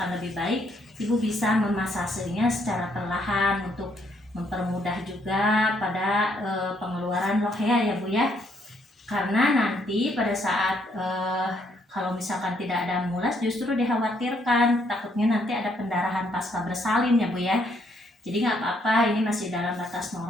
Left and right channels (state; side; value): normal; both; correlation 0.71